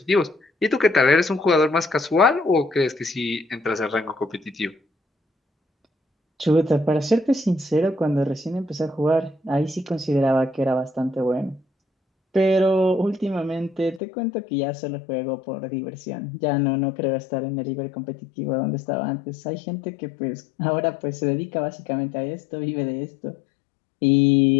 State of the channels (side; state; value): right; drops out; at 14.0 s